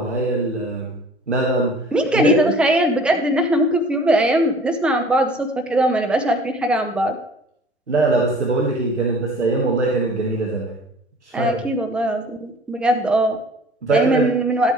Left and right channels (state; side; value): normal; both; correlation 0.48